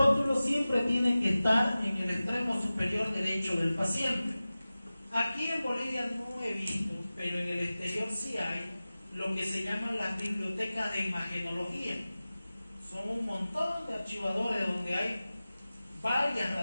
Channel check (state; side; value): inverted; both; correlation -0.96